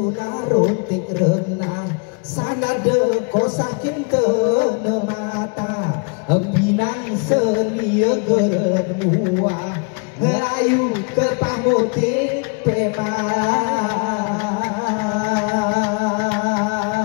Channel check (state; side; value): quieter; right; 35.2 dB